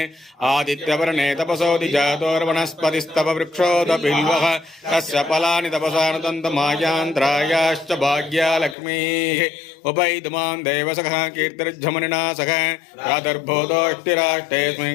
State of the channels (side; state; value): right; drops out; at 8.8 s